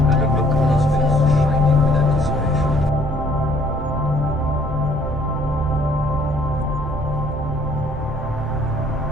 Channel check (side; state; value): both; normal; correlation 0.61